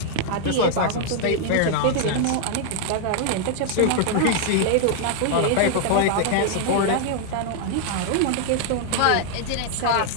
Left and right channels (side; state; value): both; different; correlation 0.00